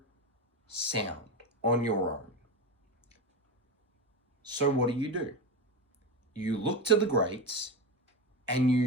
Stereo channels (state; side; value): normal; both; correlation 0.20